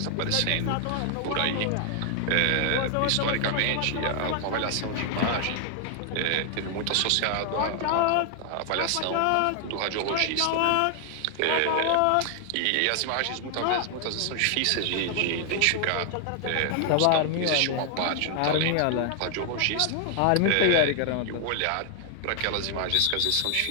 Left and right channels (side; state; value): both; different; correlation 0.00